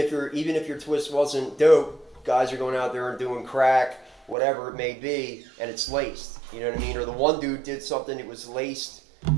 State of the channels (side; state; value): left; drops out; at 4.4 s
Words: your twist wasn't dope, guys are going out there and doing crack, whatever it may be, and it's laced. You know what I mean? Or the one dude did something, it was laced.